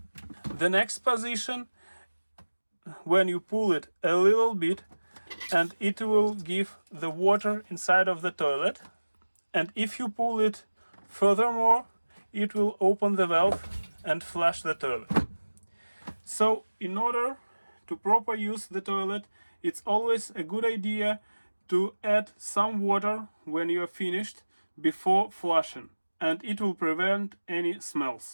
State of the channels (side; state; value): both; inverted; correlation -1.00